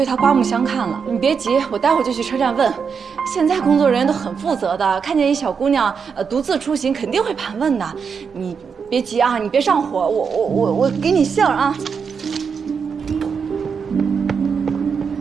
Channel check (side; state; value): left; quieter; 6.1 dB